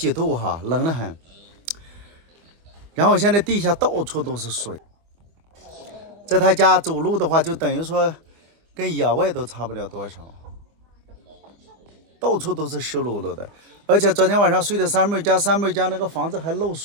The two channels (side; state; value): left; late; 25 ms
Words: 度哈，冷得很。然后现在地下到处都是水，在他家走路的话，就等于说跟野外都差不了多少，到处都是湿漉漉的。而且昨天晚上睡的三妹家那个房子还漏